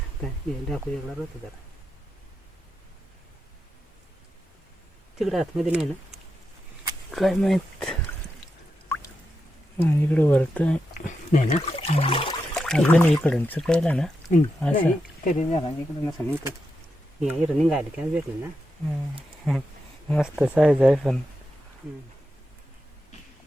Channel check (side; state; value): both; normal; correlation 0.87